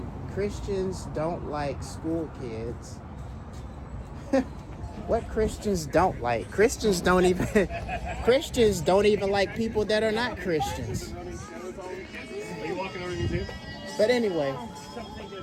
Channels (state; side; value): identical; both; correlation 1.00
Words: Christians don't like school kids. What Christians don't like? Christians don't even like people that are not Christians. Are you walking over you too? But anyway,